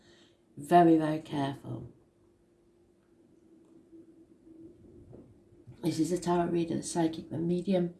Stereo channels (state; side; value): identical; both; correlation 1.00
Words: Very, very careful. This is a tarot reader, the psychic, the medium,